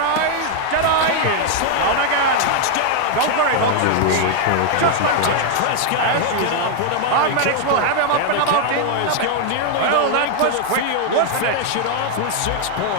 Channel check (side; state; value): both; different; correlation 0.00